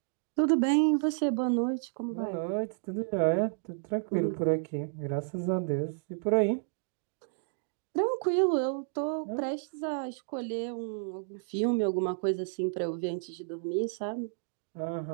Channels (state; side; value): silent; left; digital silence